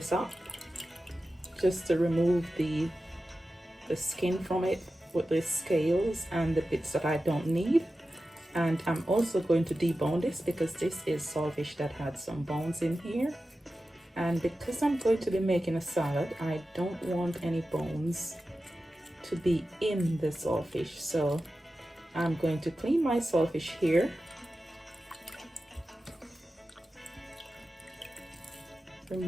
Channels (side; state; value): both; normal; correlation 0.93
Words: up, just to remove the skin from it with the scales and the bits that I don't need. And I'm also going to debone this because this is saltfish that had some bones in here. And because I'm going to be making a salad, I don't want any bones to be in the saltfish. So I'm going to clean my saltfish here.